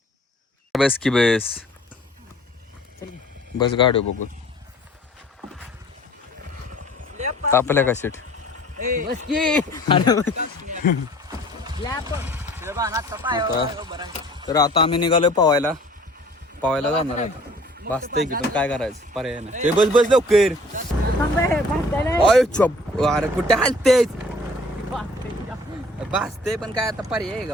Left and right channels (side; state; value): both; normal; correlation 0.52